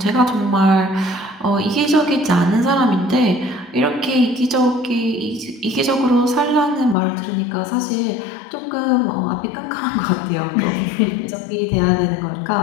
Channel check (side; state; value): right; drops out; at 7.0 s